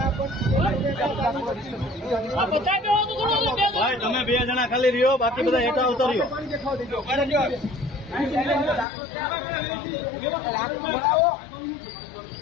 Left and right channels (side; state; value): right; drops out; at 8.8 s